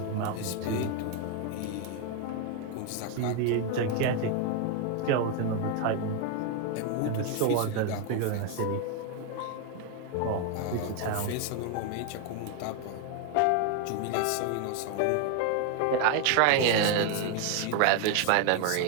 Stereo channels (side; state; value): both; different; correlation 0.01